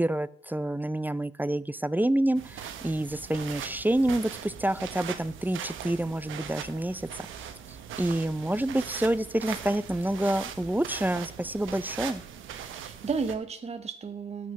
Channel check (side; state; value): both; normal; correlation 0.89